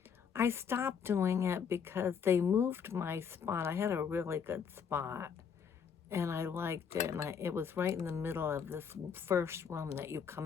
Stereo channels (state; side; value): quieter; right; 7.0 dB